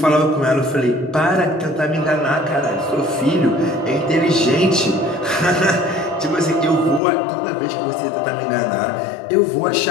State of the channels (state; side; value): drops out; right; at 7.0 s